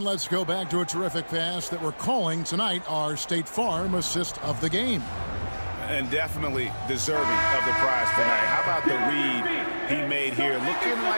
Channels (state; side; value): inverted; both; correlation -1.00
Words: let's go back to a terrific pass that we're calling tonight our State Farm assist of the game. And definitely deserving of the prize tonight. How about the read he made here? Looking